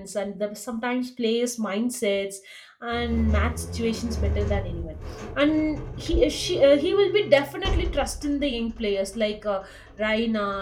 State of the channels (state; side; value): identical; both; correlation 1.00